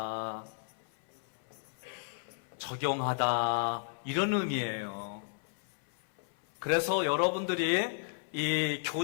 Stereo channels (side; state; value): right; silent; 55 dB below the other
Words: 적용하다, 이런 의미예요. 그래서 여러분들이 이